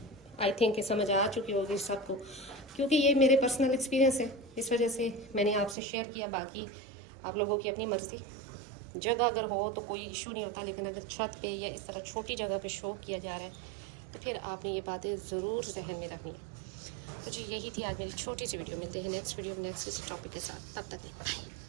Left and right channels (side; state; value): left; drops out; at 5.8 s